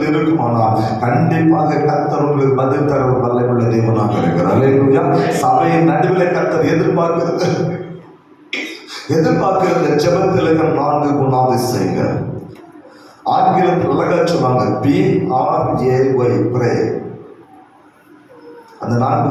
இருக்குமானால் கண்டிப்பாக கர்த்தர் உங்களுக்கு பதில் தர வல்லமையுள்ள தேவனாக இருக்கிறார். அல்லேலூயா. சபையின் நடுவில் கர்த்தர் எதிர்பார்க்கிறது ஜெபத்தில் இருக்கிற 4 குணாதிசயங்கள். ஆங்கிலத்தில் அழகா சொன்னாங்க, PRAY, ப்ரே. அந்த 4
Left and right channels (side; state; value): both; identical; correlation 1.00